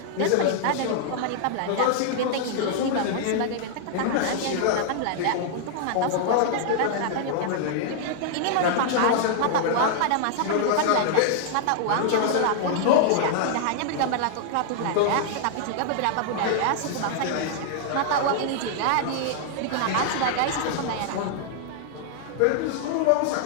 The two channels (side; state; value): both; different; correlation -0.01